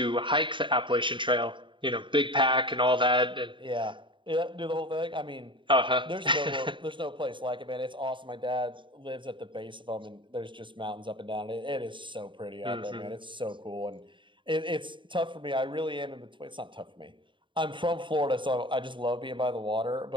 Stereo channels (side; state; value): left; late; 0.24 ms